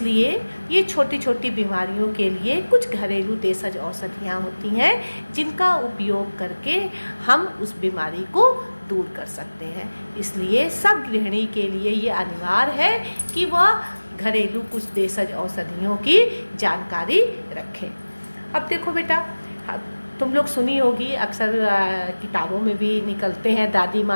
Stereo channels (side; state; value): both; inverted; correlation -1.00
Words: ये छोटी छोटी बीमारियों के लिए कुछ घरेलू देशज औषधियाँ होती हैं जिनका उपयोग करके हम उस बीमारी को दूर कर सकते हैं। इसलिए सब गृहिणी के लिए ये अनिवार्य है कि वह घरेलू कुछ देशज औषधियों की जानकारी रखें। अब देखो बेटा, तुम लोग सुनी होगी, अक्सर किताबों में भी निकलते हैं दादी